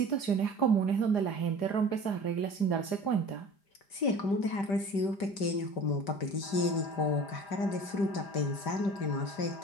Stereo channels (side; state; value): right; late; 5.1 ms